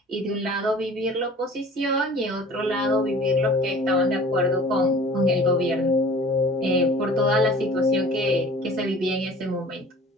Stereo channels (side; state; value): both; normal; correlation 0.45